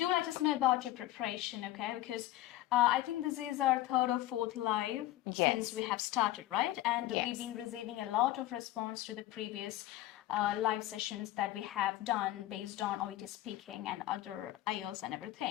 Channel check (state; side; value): quieter; right; 15.1 dB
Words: let us know about your preparation, okay? Because I think this is our third or fourth live since we have started, right? And we've been receiving a lot of response to the previous live sessions that we have done based on OET speaking and other IELTS and